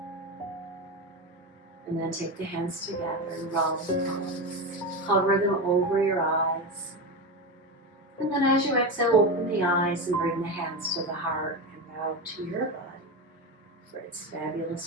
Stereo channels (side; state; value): both; normal; correlation 0.18